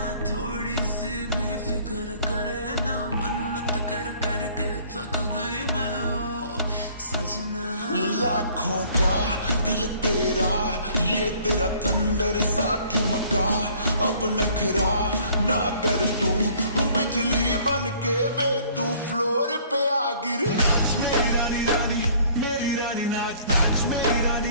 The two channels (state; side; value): inverted; both; correlation -0.56